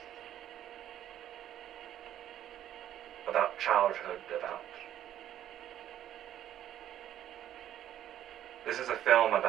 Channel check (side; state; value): left; quieter; 11.5 dB